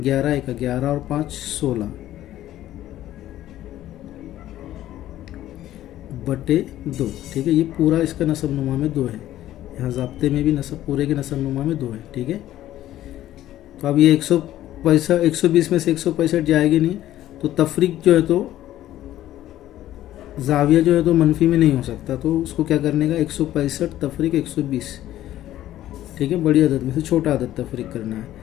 1 11 और 5 16 बटे 2। ठीक है, ये पूरा इसका नसब नुमा में 2 है। यहाँ ज़ाब्ते में भी नसब पूरे के नसब नुमा में 2 है। ठीक है, तो अब ये 120 में से 165 जाएगी नहीं, तो तफरीक जो है तो जाविया जो है तो मनफी में नहीं हो सकता। तो उसको क्या करने का, 165 तफरीक 120। ठीक है, बड़ी आदत में से छोटा आदत तफरीक करना है।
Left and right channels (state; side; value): quieter; right; 13.4 dB